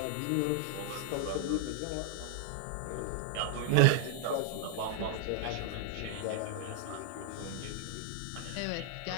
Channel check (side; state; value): both; different; correlation 0.00